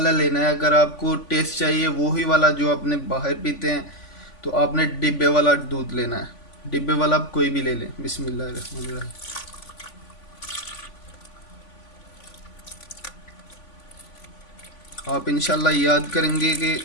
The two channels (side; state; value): right; late; 3.5 ms